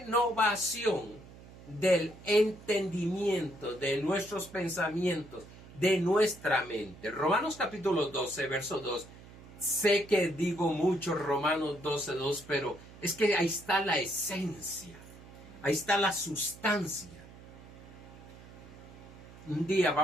del entendimiento de nuestros pensamientos, de nuestra mente. Romanos capítulo 12, verso 2, Sé que digo mucho Romanos 12:2, pero es que ahí está la esencia, ahí está la sustancia. Un día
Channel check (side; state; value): right; noise; hum, 19 dB below the sound